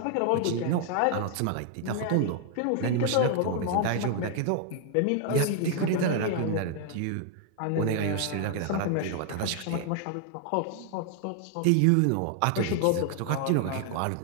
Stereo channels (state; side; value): different; both; correlation 0.00